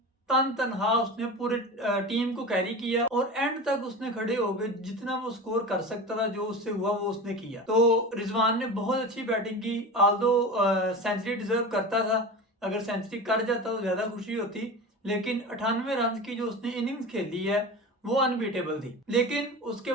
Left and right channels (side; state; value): both; normal; correlation 0.30